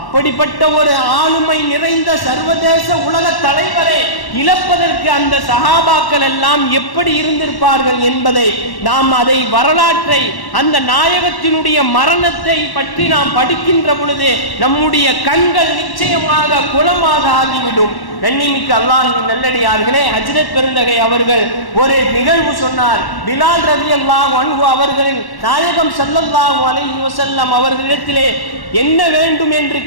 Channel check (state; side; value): late; right; 1.1 ms